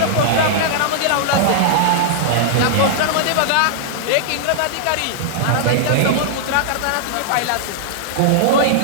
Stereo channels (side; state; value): both; different; correlation -0.01